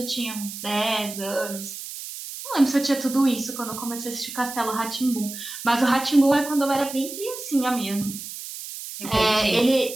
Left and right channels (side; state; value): right; noise; hiss, 10 dB below the sound